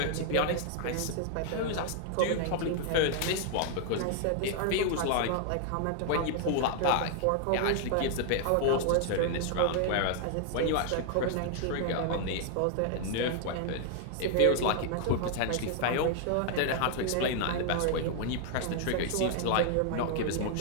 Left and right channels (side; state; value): both; different; correlation 0.00